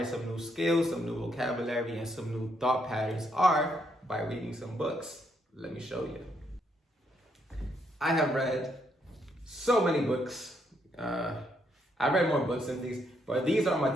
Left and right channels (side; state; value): both; normal; correlation 0.75